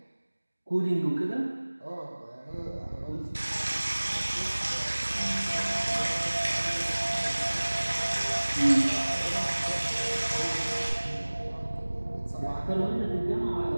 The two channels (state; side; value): inverted; both; correlation -1.00